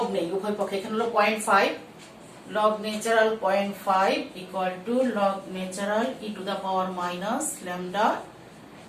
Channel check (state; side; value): identical; both; correlation 1.00